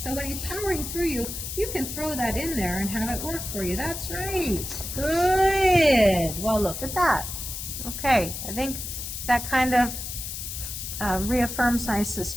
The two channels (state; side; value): noise; left; hiss, 6 dB below the sound